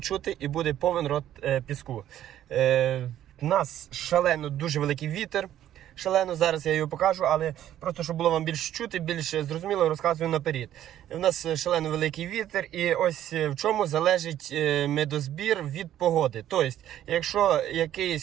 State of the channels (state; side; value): quieter; left; 11.8 dB